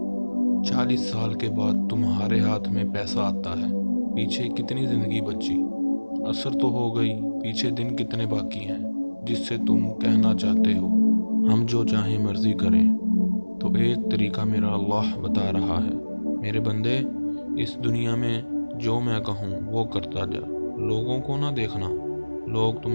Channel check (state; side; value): inverted; both; correlation -1.00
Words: 40 سال کے بعد تمہارے ہاتھ میں پیسہ آتا ہے، پیچھے کتنی زندگی بچی؟ عصر تو ہو گئی، پیچھے دن کتنے باقی ہیں جس سے تم کہنا چاہتے ہو ہم جو چاہیں مرضی کریں؟ تو ایک طریقہ میرا اللہ بتا رہا ہے، میرے بندے اس دنیا میں جو میں کہوں وہ کرتا جا، لوگوں کو نہ دیکھنا۔ لوگ